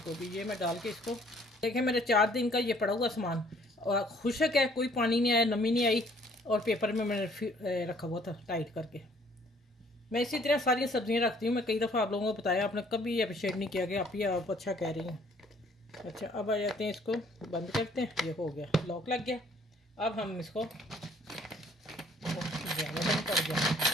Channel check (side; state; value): both; normal; correlation 0.60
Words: गोभी। ये मैं डाल के इसको, देखें मेरे 4 दिन का ये पड़ा हुआ सामान, और खुशक है, कोई पानी नहीं आया, नमी नहीं आई, और पेपर में मैंने रखा हुआ था टाइट करके। मैं इसी तरह सारी सब्जियां रखती हूँ। मैं कई दफ़ा आप लोगों को बताया, आपने कभी अप्रिशिएट नहीं किया कि आप अच्छा कह रही हैं। अच्छा, अब आ जाते हैं, इसको बंद करते हैं। ये हो गया, लॉक लग गया। अब हम इसको बंद कर दिया।